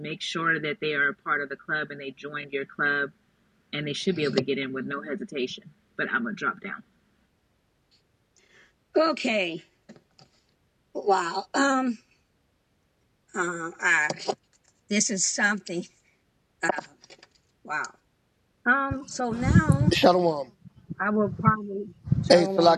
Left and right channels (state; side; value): identical; both; correlation 1.00